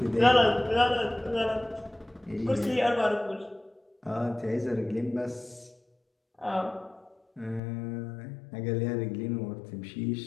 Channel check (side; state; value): right; drops out; at 7.6 s